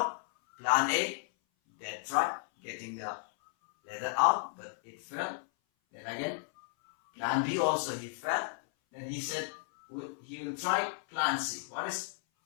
plan A, Dad tried getting the leather out, but it fell. Then again, plan B also he fell. Then he said he will try plan C. What is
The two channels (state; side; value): silent; right; 55 dB below the other